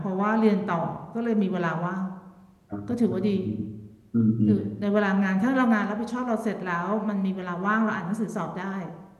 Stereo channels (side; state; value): both; identical; correlation 1.00